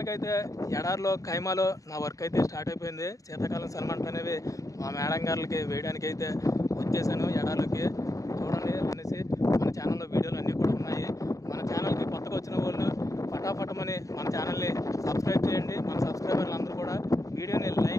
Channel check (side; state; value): right; late; 0.16 ms